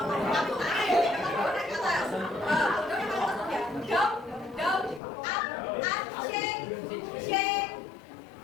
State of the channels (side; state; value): right; drops out; at 5.0 s